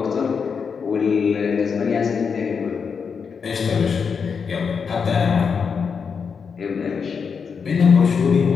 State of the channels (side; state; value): right; quieter; 6.0 dB